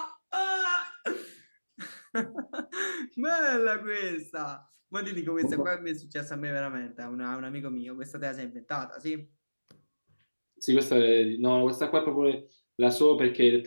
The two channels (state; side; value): inverted; both; correlation -1.00